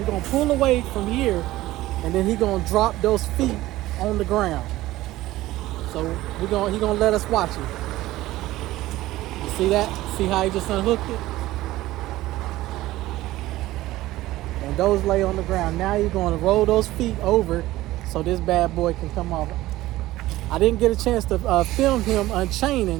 gonna pull away from here, and then he gonna drop those feet on the ground. So he gonna let us watch it. You see that? See how he just unhooked it? And those lay on the ground. Now you're gonna roll those feet over so this bad boy can come off. I didn't get a chance to film him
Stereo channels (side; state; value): left; quieter; 16.7 dB